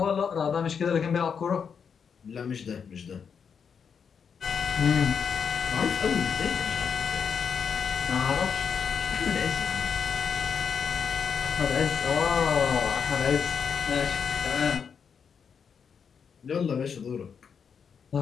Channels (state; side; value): quieter; right; 6.7 dB